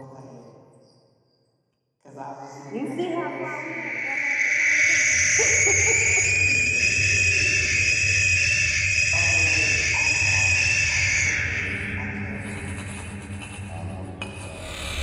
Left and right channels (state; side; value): identical; both; correlation 1.00